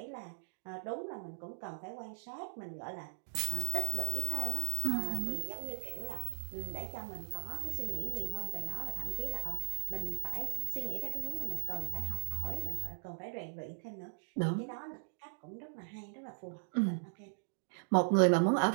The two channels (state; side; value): silent; left; digital silence